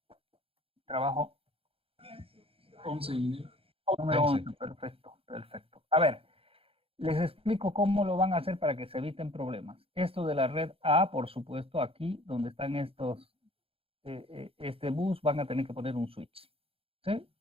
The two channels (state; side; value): late; left; 0.27 ms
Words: Trabajo 11, ingeniero. Número 11, perfecto, perfecto. A ver, les explico cómo lo van a hacer para que se eviten problemas. Esto de la red A, por supuesto, aquí donde están estos, este bus, van a tener que poner un switch, ¿sí?